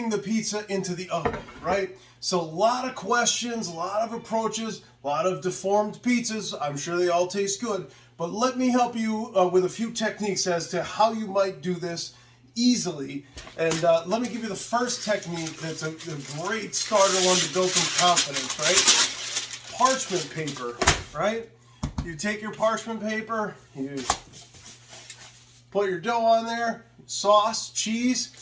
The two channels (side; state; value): both; identical; correlation 1.00